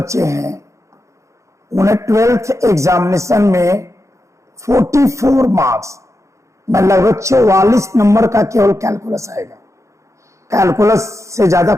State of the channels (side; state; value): left; late; 0.15 ms